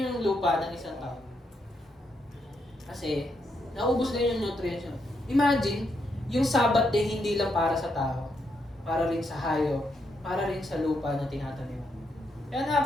yung lupa ng isang tao. Kasi, naubos na yung nutrients yun. Imagine, yung Sabbath day hindi lang para sa tao, para rin sa hayop, para rin sa lupa na tinatanim. Kaya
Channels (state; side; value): normal; both; correlation 0.79